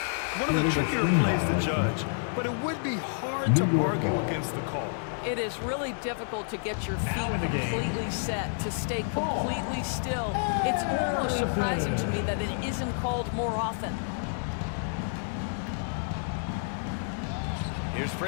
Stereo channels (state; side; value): silent; right; digital silence